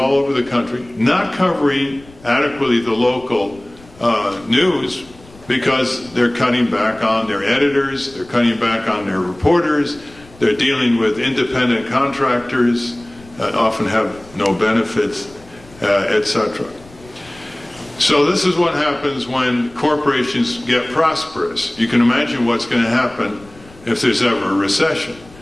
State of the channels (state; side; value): noise; left; rumble, 23 dB below the sound